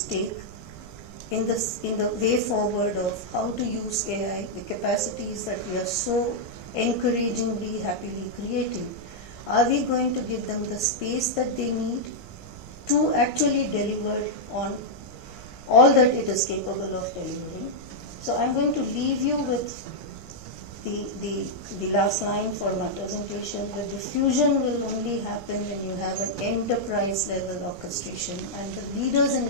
take in the way forward of how to use AI, the capacities that we are so encouragingly, happily creating. Are we going to give them the space that they need to actually deliver on all that it is capable of delivering? So I'm going to leave you with the last line for my presentation. The diffusion will only happen when you have an enterprise level orchestration, and the leaders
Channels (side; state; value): right; noise; rumble, 17 dB below the sound